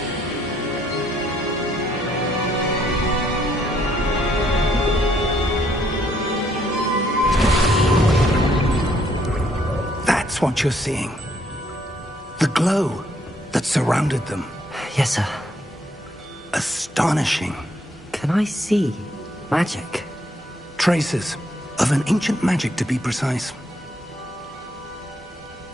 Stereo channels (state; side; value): normal; both; correlation 0.70